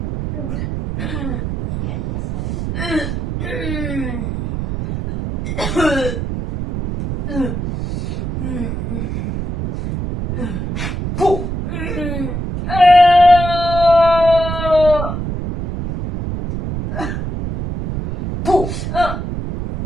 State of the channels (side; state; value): right; noise; rumble, 4 dB below the sound